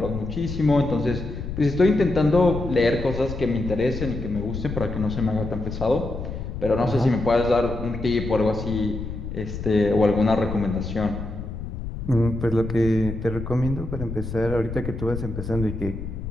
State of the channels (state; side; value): noise; left; rumble, 7 dB below the sound